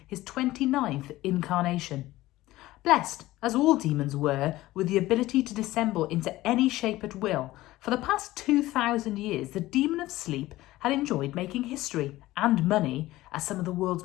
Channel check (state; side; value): quieter; right; 17.0 dB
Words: his 29th incarnation. Blessed, as all demons were, with the ability to dissemble into any shape at will, for the past 2,000 years the demon of sleep had enjoyed making history and money as some of the world's